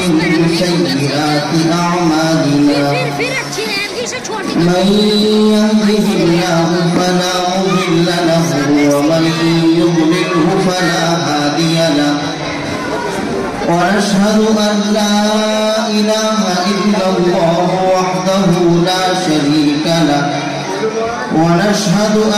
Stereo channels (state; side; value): identical; both; correlation 1.00